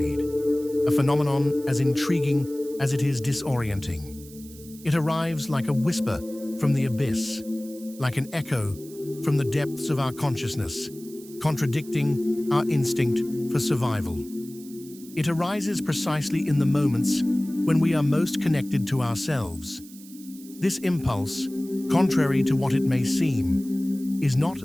a phenomenon as intriguing as it is disorienting. It arrives like a whisper from the abyss, like an echo from the depths of our consciousness, contradicting our instinct for survival. It arises precisely in the moments when we are most connected to ourselves. This impulse, contrary to what it may seem, is not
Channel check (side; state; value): right; noise; hiss, 20 dB below the sound